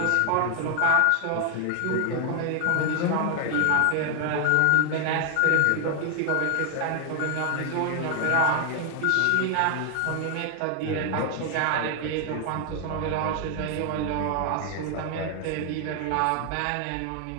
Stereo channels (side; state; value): both; different; correlation 0.00